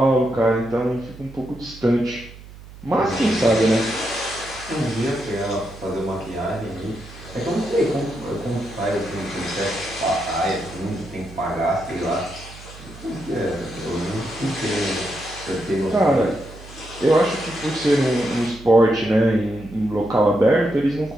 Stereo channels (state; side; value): noise; right; hum, 18 dB below the sound